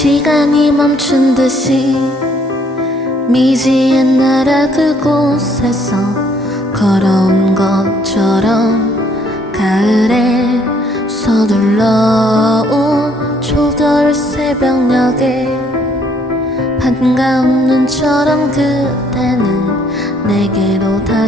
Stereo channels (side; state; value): both; normal; correlation 0.66